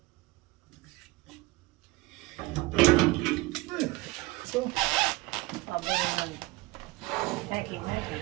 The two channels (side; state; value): left; quieter; 21.8 dB